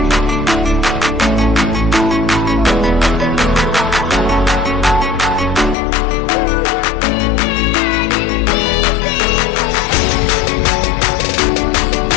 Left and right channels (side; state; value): right; drops out; at 5.8 s